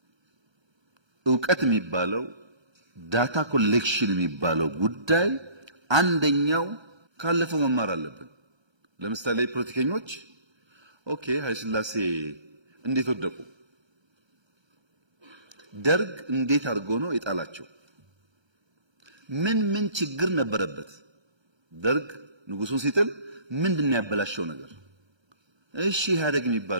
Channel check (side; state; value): left; late; 1.3 ms